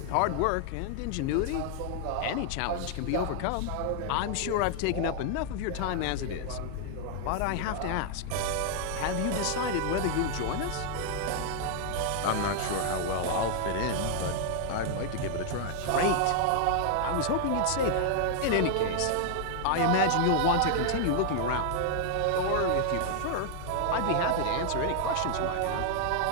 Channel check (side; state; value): both; different; correlation 0.00